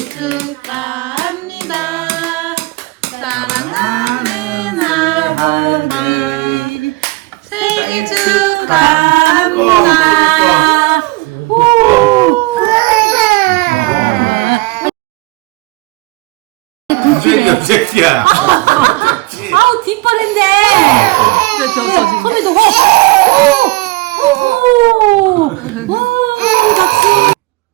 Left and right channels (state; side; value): quieter; left; 22.2 dB